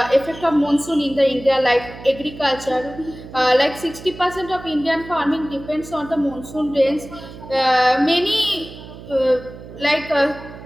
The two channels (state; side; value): noise; right; hum, 15 dB below the sound